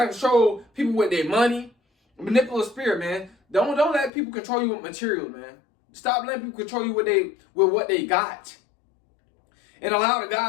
to control people with their money, manipulative spirit, man. Don't let people control you with material, man. Stop letting people control you with what they got, and allow the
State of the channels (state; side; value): drops out; right; at 4.1 s